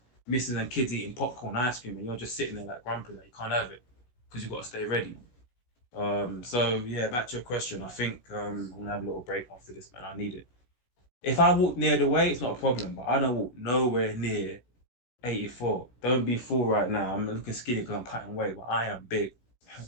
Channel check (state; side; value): late; right; 16 ms